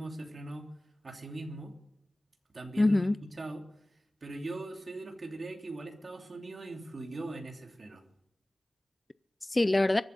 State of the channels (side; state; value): both; normal; correlation 0.98